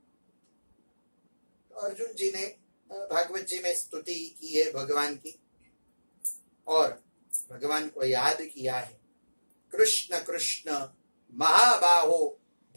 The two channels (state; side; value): inverted; both; correlation -1.00